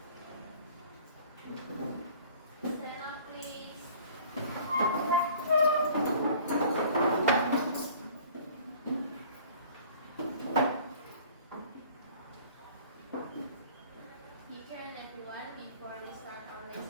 Stand up, please. Teacher and everyone, before we start our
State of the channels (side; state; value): both; inverted; correlation -0.50